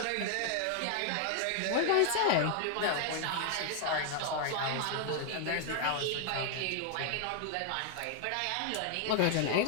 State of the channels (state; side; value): different; both; correlation 0.00